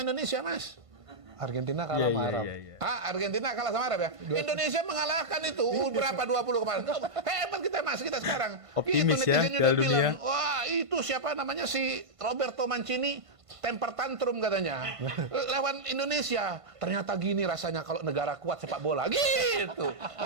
Mas. Argentina kalah sama Arab. Iya. Argentina kalah sama Arab ya. Indonesia mengalahkan itu berapa 20 kemarin. Hebat kita Mas, kita sekarang. Optimis Itu ya, netizen Piala udah bilang, Dunia. wah itu siapa namanya si Roberto Mancini temper tantrum katanya. Lawan Indonesia. Ternyata gini rasanya kalau negara kuat sepak bola. Gitu.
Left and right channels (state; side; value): late; left; 1.5 ms